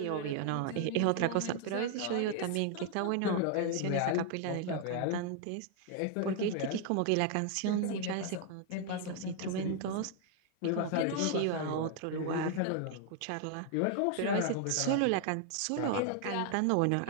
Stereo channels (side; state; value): both; different; correlation 0.00